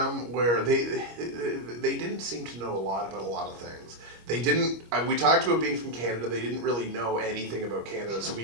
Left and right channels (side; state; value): left; late; 25 ms